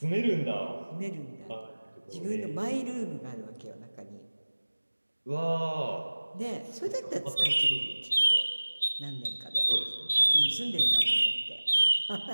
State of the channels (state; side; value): inverted; both; correlation -1.00